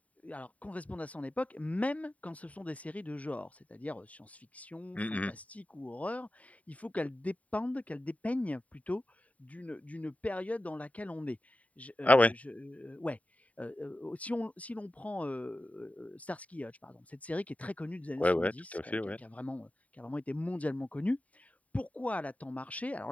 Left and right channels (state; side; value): late; right; 0.069 ms